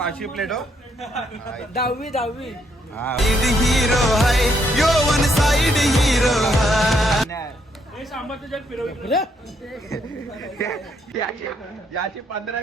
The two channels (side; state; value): both; normal; correlation 0.73